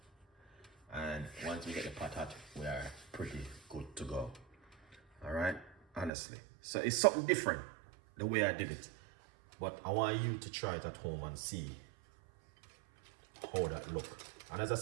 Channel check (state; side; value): drops out; left; at 6.1 s